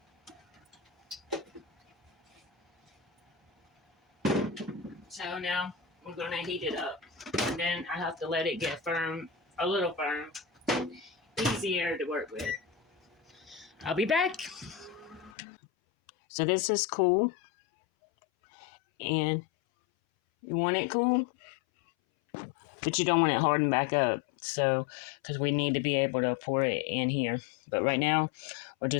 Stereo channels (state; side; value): drops out; right; at 15.3 s